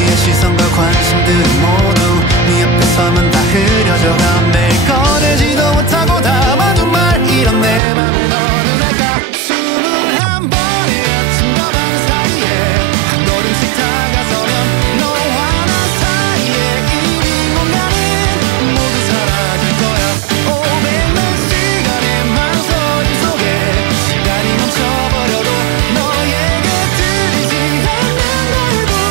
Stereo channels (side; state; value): left; drops out; at 7.8 s